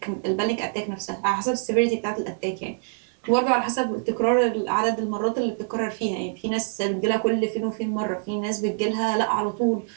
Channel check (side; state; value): left; silent; digital silence